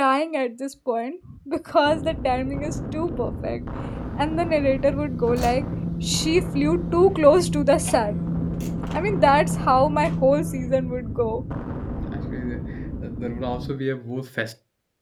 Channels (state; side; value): identical; both; correlation 1.00